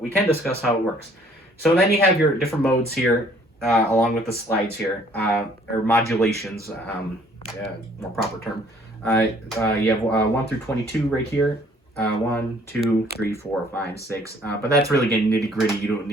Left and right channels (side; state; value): both; normal; correlation 0.60